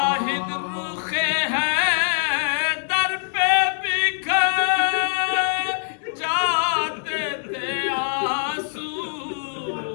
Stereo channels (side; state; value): right; silent; 63 dB below the other